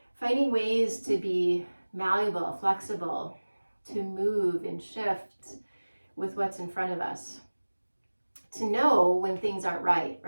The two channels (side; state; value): both; inverted; correlation -1.00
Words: finding ways to be malleable, flexible, to move and shift with what's in front of us. To know when things aren't right?